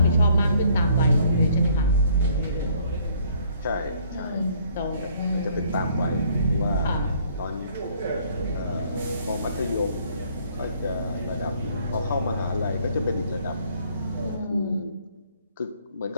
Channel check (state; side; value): inverted; both; correlation -0.62